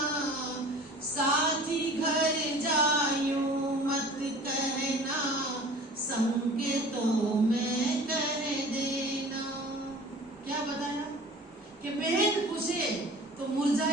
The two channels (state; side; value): normal; both; correlation 0.44